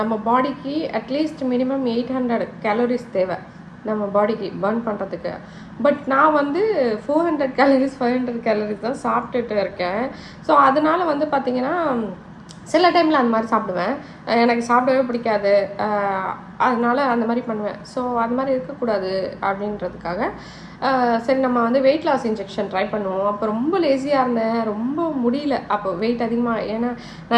நம்ம பாடிக்கு அட்லீஸ்ட் மினிமம் 800 calories தேவை நம்ம பாடிக்கு பர்ன் பண்ணுறதுக்கு. பட் நான் வந்து 400 calories 500 calories தான் சாப்பிட்டுட்டு இருக்கேன். ஸோ அதனால் வந்து பார்த்திங்கன்னா சில டைமில் அந்த மாதிரி சாப்பிடுவேன், எனக்கு சாப்பிடவே பிடிக்காது, அதனால் அந்த மாதிரி பண்ணுவேன். ஸோ அது மாதிரி இருக்கக்கூடாது அப்படின்றதுக்காக சரி நம்ம வந்து வெயிட் லாஸ் இன்ஜெக்ஷன் ட்ரை பண்ணுவோம். அப்போ ரொம்ப லேசியாக இருந்தேன், ரொம்ப முடியல. அப்போ வெயிட் அதிகமாக, ஏன்னா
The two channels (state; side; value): identical; both; correlation 1.00